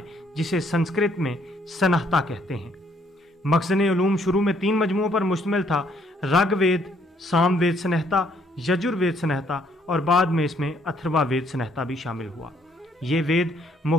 जिसे संस्कृत में सनहता कहते हैं। मखज़न उलूम शुरू में 3 मजमुओं पर मुश्तमिल था: ऋग्वेद, सामवेद सनहता, यजुर्वेद सनहता, और बाद में इसमें अथर्ववेद सनहता भी शामिल हुआ। ये वेद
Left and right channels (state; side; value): normal; both; correlation 0.67